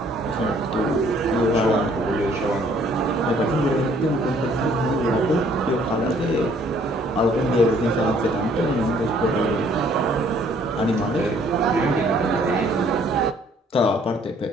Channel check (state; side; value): normal; both; correlation 0.61